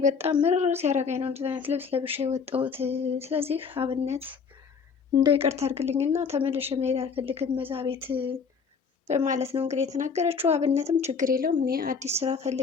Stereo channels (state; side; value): quieter; right; 5.8 dB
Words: በጣም ምርር ሲያደርገኝ ነው እንደዚህ አይነት ልብስ ለብሼ የወጣሁት። ስለዚህ አብነት እንደው ይቅርታ አድርግልኝና ተመልሼ መሄድ አልፈልግም እዛ ቤት በማለት ነው እንግዲህ የተናገረችው። አብነትም ችግር የለውም እኔ አዲስ ስራ